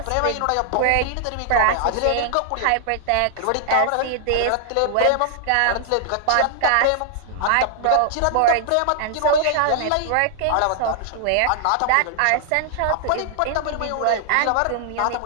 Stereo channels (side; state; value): both; different; correlation -0.01